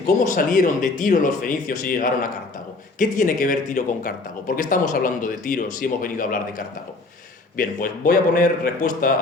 ¿cómo salieron de Tiro los fenicios y llegaron a Cartago? ¿Qué tiene que ver Tiro con Cartago? ¿Por qué estamos hablando de Tiro si hemos venido a hablar de Cartago? Bien, pues voy a poner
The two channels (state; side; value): quieter; right; 3.4 dB